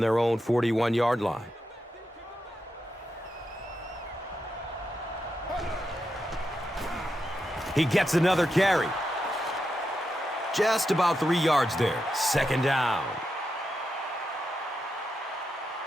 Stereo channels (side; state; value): both; normal; correlation 0.86